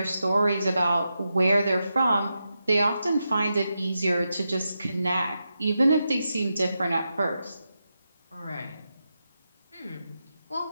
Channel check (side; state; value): both; inverted; correlation -0.88